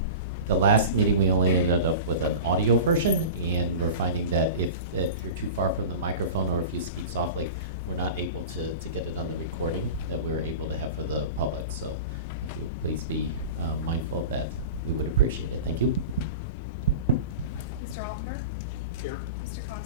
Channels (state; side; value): inverted; both; correlation -0.32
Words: meeting, we only ended up with an audio version, and we're finding that if you're too far from the microphone or if you speak softly, we're not able to get it on the recording that we're able to have for the public. So if you would please be mindful of that, we would appreciate it. Thank you. Mr. Altenberg? Here. Mr.